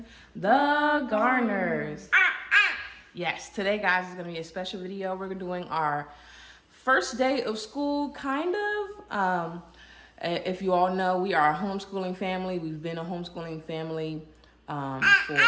the Garners. Yes, today, guys, is going to be a special video. We're doing our first day of school, kind of. If you all know, we are a homeschooling family. We've been a homeschooling family for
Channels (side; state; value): both; identical; correlation 1.00